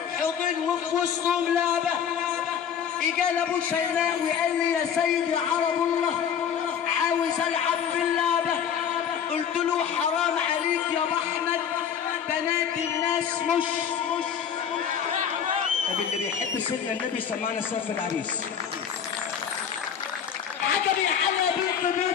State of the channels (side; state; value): right; quieter; 8.1 dB